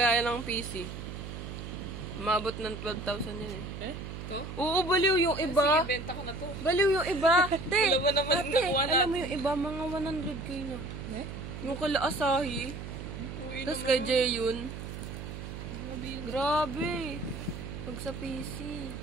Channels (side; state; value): right; noise; hum, 9 dB below the sound